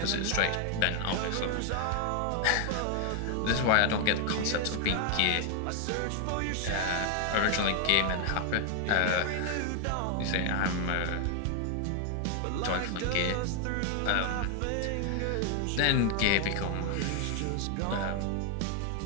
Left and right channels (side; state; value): both; different; correlation 0.00